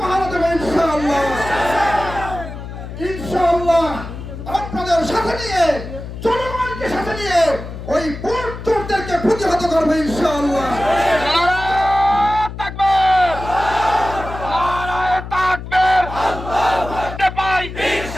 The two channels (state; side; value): noise; left; hum, 10 dB below the sound